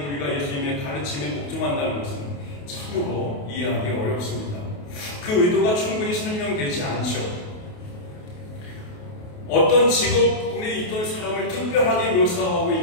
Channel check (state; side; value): late; right; 28 ms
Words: 예수님의 가르침에 복종한다는 것은 참으로 이해하기 어렵습니다. 그 의도가 충분히 설명되지 않죠. 어떤 직업군에 있던 사람을 특별하게 묘사하고